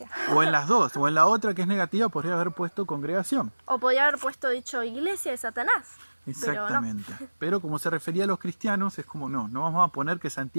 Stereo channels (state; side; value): inverted; both; correlation -1.00